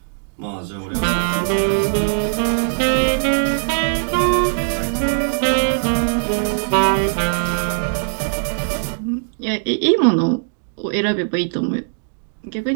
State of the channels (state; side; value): silent; left; digital silence